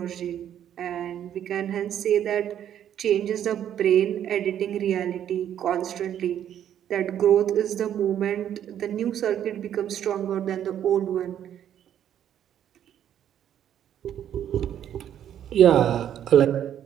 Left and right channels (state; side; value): quieter; left; 10.2 dB